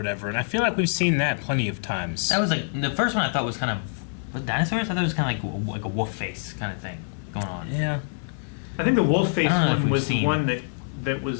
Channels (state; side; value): silent; right; digital silence